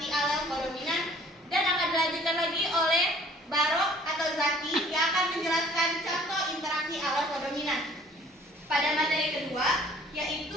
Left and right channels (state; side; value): normal; both; correlation 0.55